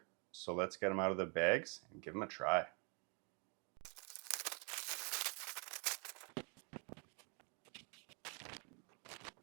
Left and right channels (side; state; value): left; quieter; 35.7 dB